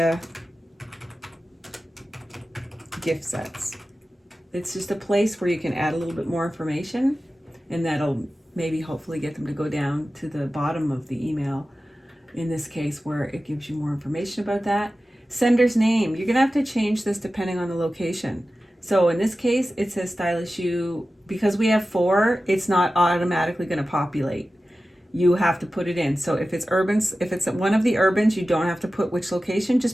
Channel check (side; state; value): both; normal; correlation 0.95